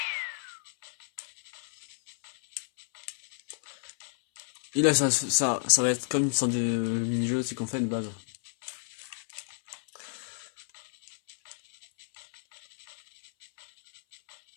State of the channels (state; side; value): silent; right; 57 dB below the other